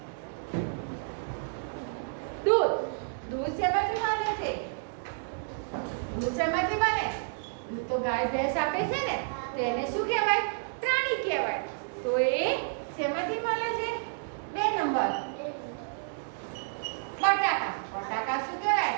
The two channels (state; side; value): silent; left; digital silence